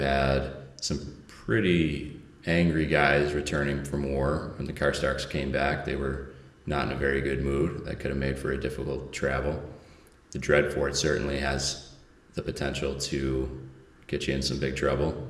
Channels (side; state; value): both; identical; correlation 1.00